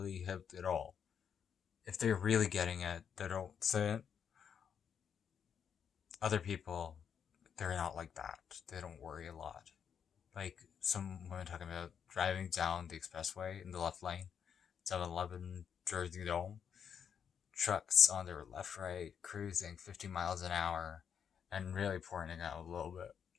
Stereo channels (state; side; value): quieter; right; 7.6 dB